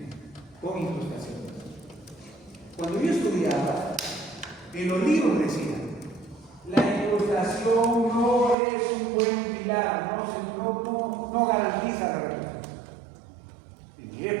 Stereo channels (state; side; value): drops out; left; at 8.6 s